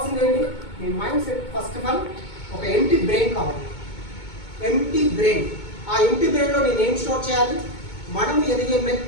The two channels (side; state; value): right; late; 2.2 ms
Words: ఏంటి? మీ mind set first of all ఒక ఎంటీ బ్రెయిన్ కావాలి. Empty brain. ఆ ఎంటీ బ్రెయిన్లో నేను ఏం స్టోర్ చేయాలి? మనం ఎదిగే